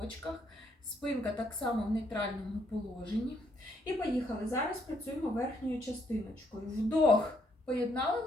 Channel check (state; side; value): normal; both; correlation 0.71